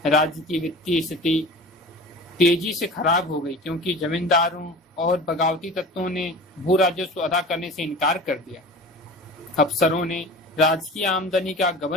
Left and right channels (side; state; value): both; normal; correlation 0.37